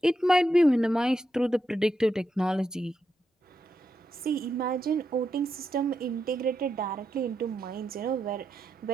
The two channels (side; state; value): both; normal; correlation 0.84